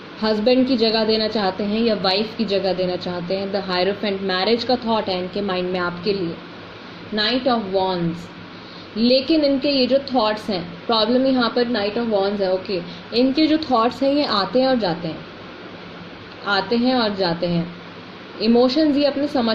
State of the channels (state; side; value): identical; both; correlation 1.00